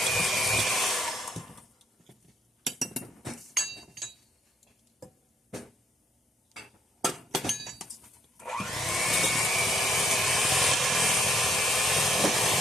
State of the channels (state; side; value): normal; both; correlation 0.70